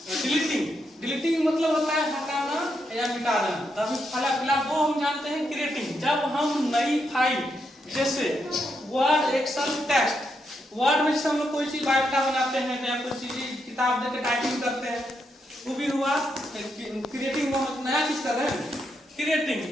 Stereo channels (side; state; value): both; normal; correlation 0.81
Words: डिलीटिंग मतलब होता है हटाना या मिटा देना। तब फिलहाल वो हम जानते हैं क्रिएटिंग। जब हम नई फाइल जैसे वर्ड, एक्सेल, टेक्स्ट, वर्ड में हम लोग कोई चीज बायोडाटा बनाते हैं या कोई चीज किताब देके टाइपिंग करते हैं, वो भी हुआ क्रिएटिंग। हम नया चीज कर रहे हैं क्रिएटिंग।